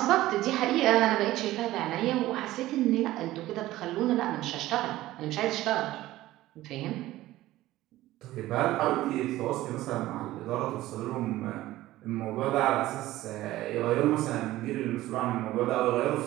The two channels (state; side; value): quieter; left; 16.0 dB